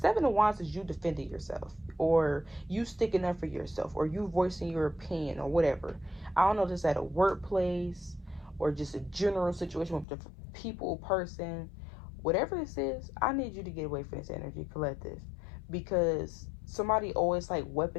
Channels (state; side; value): drops out; right; at 10.1 s